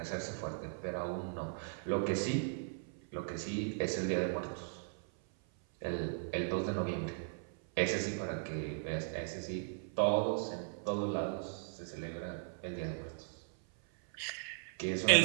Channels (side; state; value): left; silent; 53 dB below the other